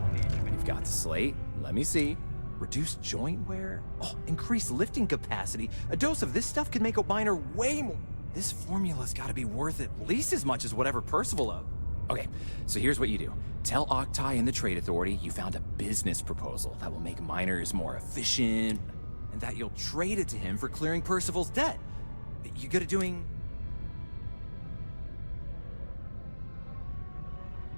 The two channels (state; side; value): inverted; both; correlation -1.00